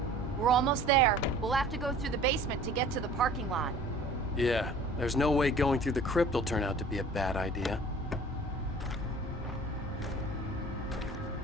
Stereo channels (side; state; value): both; normal; correlation 0.47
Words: We're almost there. We'll have to go through the basement to get to the parking lot. Yeah, there's no way going through the crypt will turn out to be a bad idea.